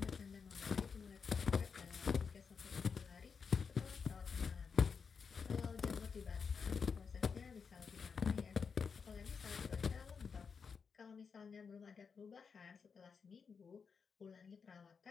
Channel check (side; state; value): right; quieter; 5.8 dB